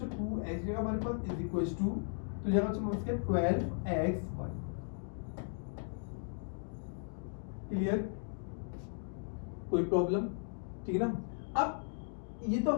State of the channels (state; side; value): silent; right; digital silence